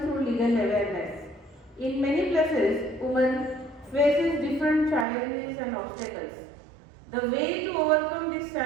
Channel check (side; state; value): left; drops out; at 5.1 s